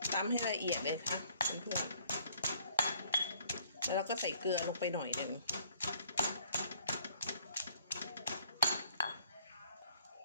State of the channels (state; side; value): inverted; both; correlation -0.60